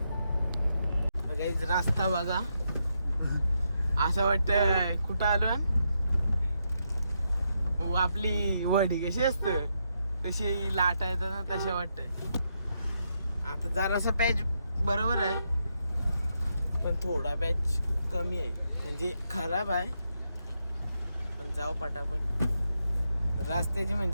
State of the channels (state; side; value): inverted; both; correlation -0.81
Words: काहीच रस्ता बघा. असं वाटतं कुठं आलो आपली वडी कशी असतं तशी लाटा येतात ना तशा वाटत. आता जरासा पॅच बरोबर आहे पण थोडा पॅच कमी आहे म्हणजे खराब आहे. पण जाऊ पटापट. रस्त्याची